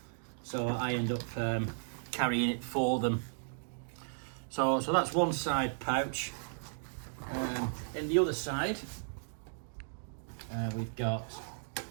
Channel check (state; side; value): silent; left; digital silence